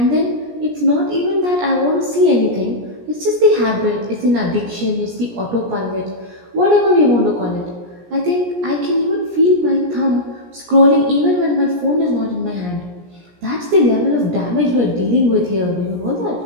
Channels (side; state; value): left; late; 17 ms